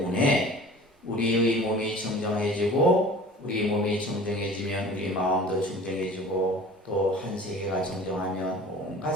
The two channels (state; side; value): normal; both; correlation 0.43